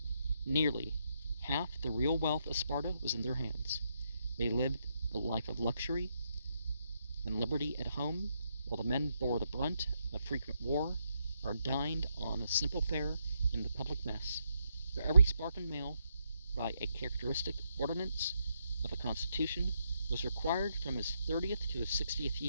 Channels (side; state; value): both; inverted; correlation -0.79